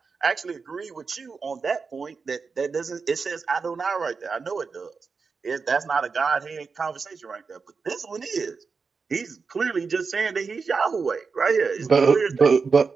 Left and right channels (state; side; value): quieter; left; 5.0 dB